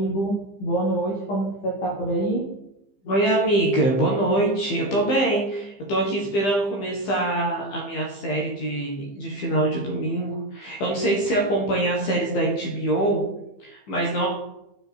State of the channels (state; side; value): late; right; 15 ms